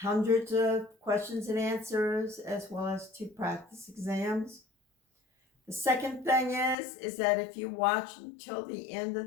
of questions and answers, as well as 2 practice exams. The second thing is that if you watch until the end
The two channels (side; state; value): right; drops out; at 6.8 s